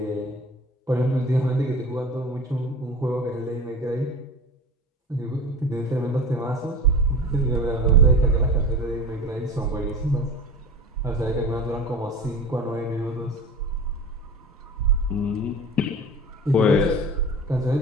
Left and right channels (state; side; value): normal; both; correlation 0.35